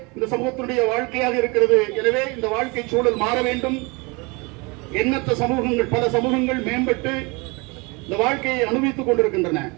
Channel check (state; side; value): quieter; left; 27.7 dB